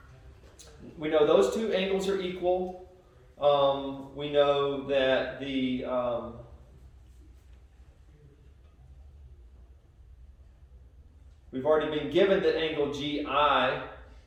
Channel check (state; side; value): identical; both; correlation 1.00